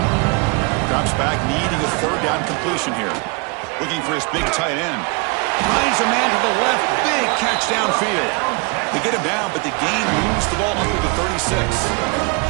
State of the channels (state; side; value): quieter; left; 30.7 dB